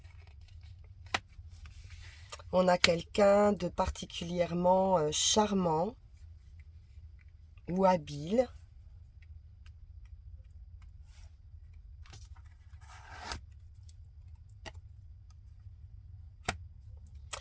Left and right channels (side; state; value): both; identical; correlation 1.00